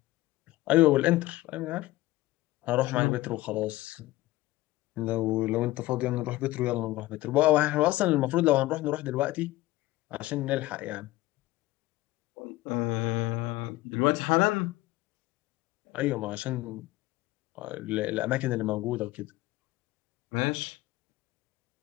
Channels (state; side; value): quieter; right; 18.0 dB